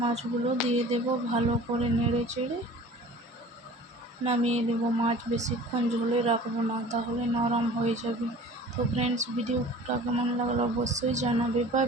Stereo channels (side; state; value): both; normal; correlation 0.44